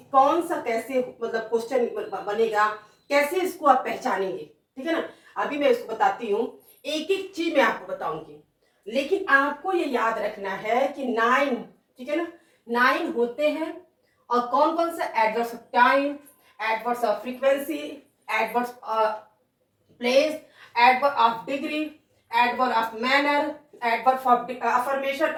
कौन सा कैसे मतलब क्वेश्चन बनेगा, कैसे इसको आप पहचानेंगे, ठीक है ना। अभी मैं इसको बताती हूँ, एक एक चीज मैं आपको बताऊंगी, लेकिन आपको ये याद रखना है कि 9, ठीक है ना, 9 होते हैं। और कौन कौन सा? Adverbs of time, adverbs of frequency, adverbs of place, adverb of degree, adverb of manner, adverb of affirmation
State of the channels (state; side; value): identical; both; correlation 1.00